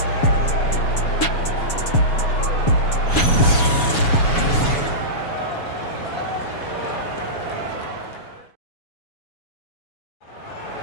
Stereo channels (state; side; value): late; right; 7.1 ms